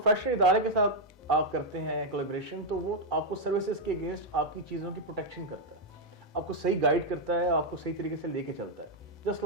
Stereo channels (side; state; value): both; normal; correlation -0.01